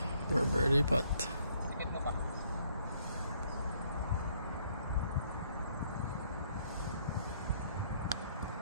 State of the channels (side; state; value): both; inverted; correlation -0.67